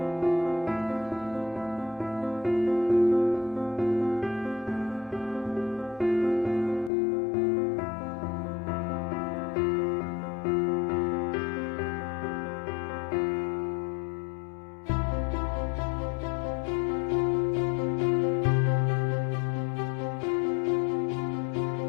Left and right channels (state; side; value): drops out; right; at 6.9 s